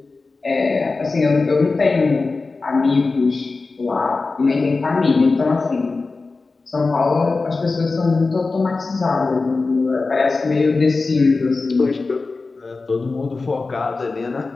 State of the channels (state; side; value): quieter; right; 3.8 dB